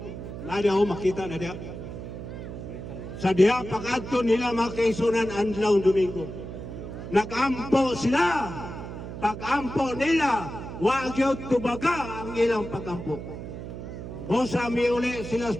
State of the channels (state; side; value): noise; right; hum, 9 dB below the sound